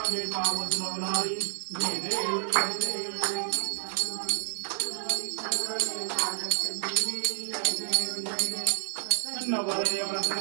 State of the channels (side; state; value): left; silent; 58 dB below the other